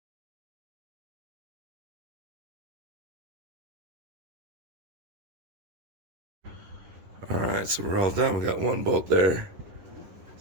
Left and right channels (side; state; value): left; late; 10 ms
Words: Alright, so we're all done. We got one bolt there.